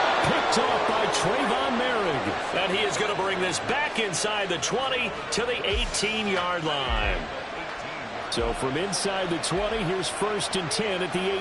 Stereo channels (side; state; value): both; identical; correlation 1.00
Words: Picked off by Trayvon Merrick. And he is going to bring this back inside the 20 to the 18-yard line. So from inside the 20, here's 1st and 10 at the